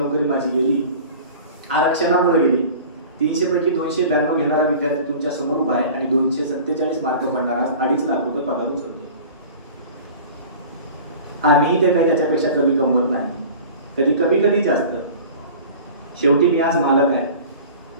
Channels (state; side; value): inverted; both; correlation -0.40